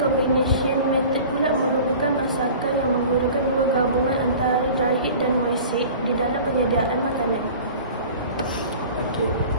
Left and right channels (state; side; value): inverted; both; correlation -0.41